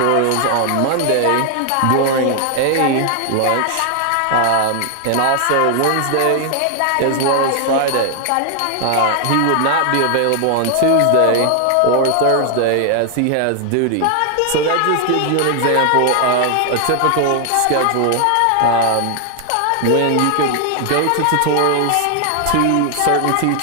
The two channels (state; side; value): different; both; correlation 0.00